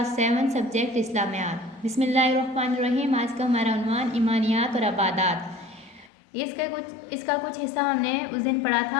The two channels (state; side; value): drops out; right; at 6.1 s